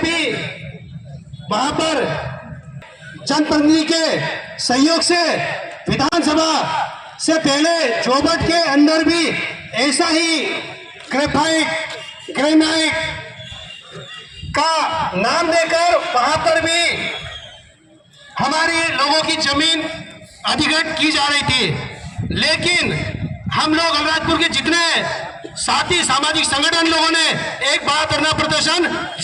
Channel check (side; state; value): both; identical; correlation 1.00